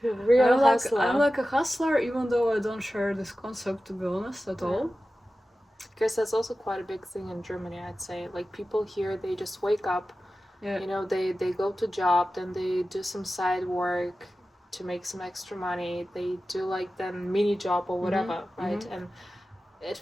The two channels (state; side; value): normal; both; correlation 0.94